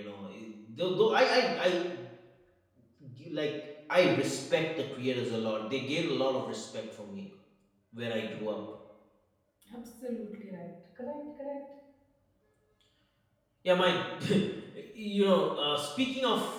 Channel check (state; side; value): identical; both; correlation 1.00